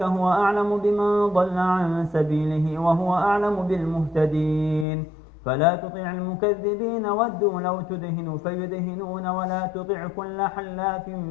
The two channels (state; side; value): drops out; right; at 4.9 s